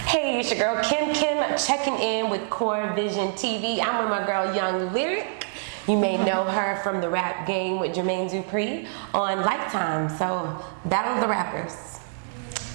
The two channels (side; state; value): left; silent; digital silence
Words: Hey, it's your girl Kim checking in with CoreVizion TV. I'm with my girl Young Lyric. You may know her from the rap game with Jermaine Dupri on Lifetime. So, Battle of the Rappers.